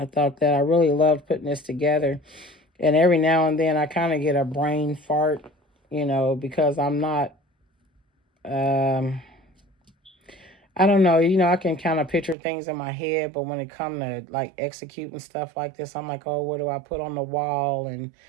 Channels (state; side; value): drops out; left; at 12.4 s